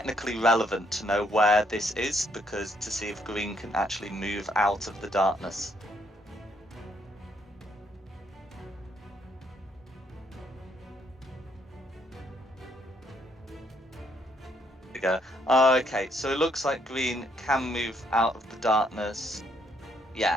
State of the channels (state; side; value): normal; both; correlation 0.71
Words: relevant to know where this is, because to see if green can actually move out of the darkness. There we go. Okay, so it looks like green can move out of the darkness.